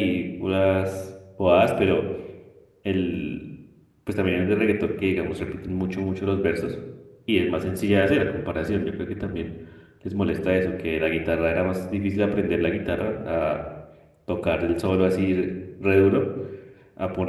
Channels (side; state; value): both; identical; correlation 1.00